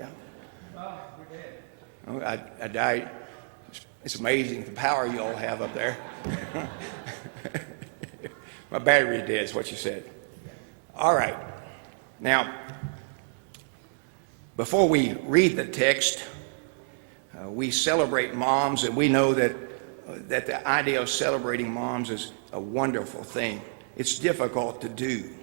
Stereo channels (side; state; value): left; silent; digital silence